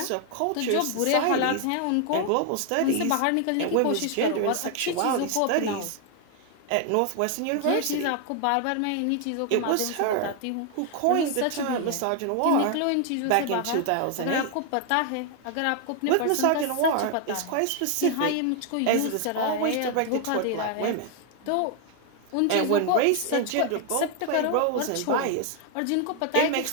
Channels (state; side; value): different; both; correlation 0.00